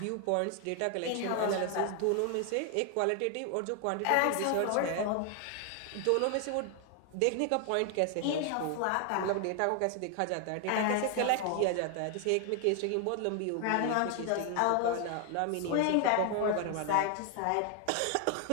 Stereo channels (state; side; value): different; both; correlation 0.00